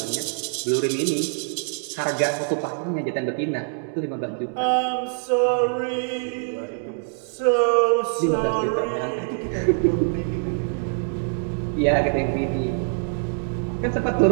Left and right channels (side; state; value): left; silent; 63 dB below the other